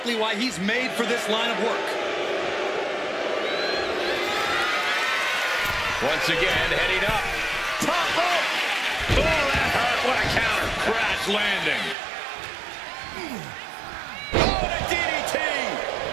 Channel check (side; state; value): left; drops out; at 12.0 s